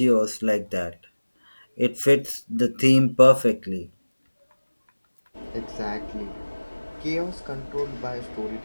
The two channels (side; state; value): both; inverted; correlation -1.00